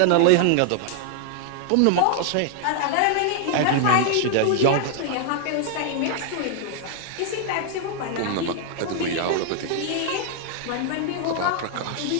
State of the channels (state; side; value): different; both; correlation 0.00